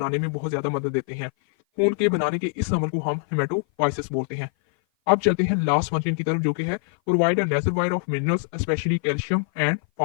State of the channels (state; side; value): silent; right; 56 dB below the other